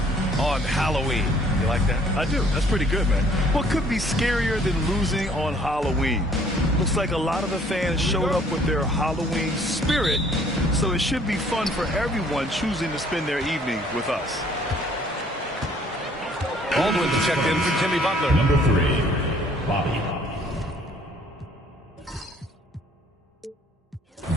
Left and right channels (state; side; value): normal; both; correlation 0.59